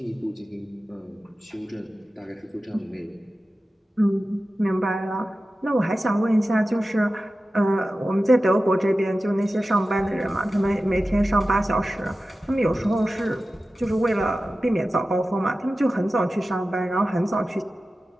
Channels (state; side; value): normal; both; correlation 0.94